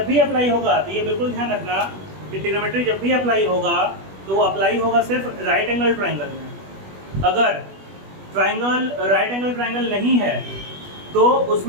भी अप्लाई होगा तो ये बिल्कुल ध्यान रखना कि ट्रिग्नोमेट्री जब भी अप्लाई होगा तो वो अप्लाई होगा सिर्फ राइट एंगल ट्रायंगल में। अगर ट्रायंगल राइट एंगल ट्रायंगल नहीं है तो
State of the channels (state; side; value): late; left; 21 ms